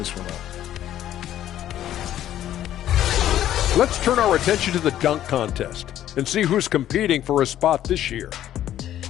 one out. Let's turn our attention to the dunk contest and see who's competing for a spot this year.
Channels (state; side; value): quieter; right; 12.0 dB